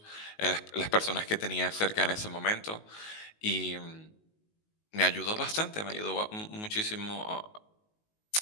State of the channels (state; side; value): late; right; 19 ms